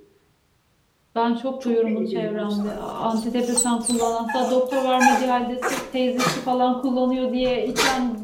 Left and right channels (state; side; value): identical; both; correlation 1.00